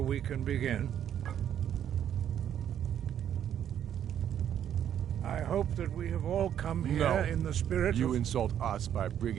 we can begin. I hope that we have all come here in the spirit You of... insult us by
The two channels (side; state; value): left; quieter; 9.9 dB